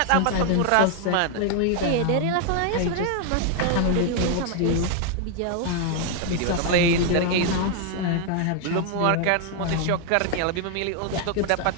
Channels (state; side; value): different; both; correlation 0.00